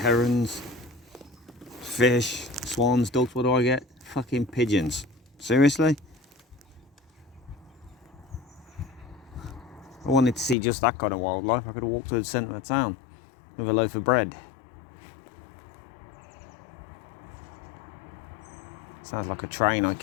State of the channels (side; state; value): right; drops out; at 10.6 s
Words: fish, swans, ducks, what do I get? Fucking pigeons. Seriously? I wanted to see just that kind of wildlife. I could have walked to the centre of town with a loaf of bread. Sounds like a train I